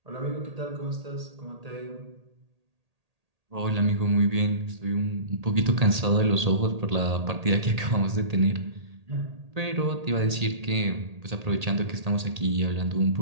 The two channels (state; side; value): late; left; 1.8 ms